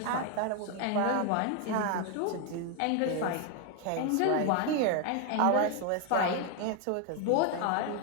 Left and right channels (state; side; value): different; both; correlation 0.01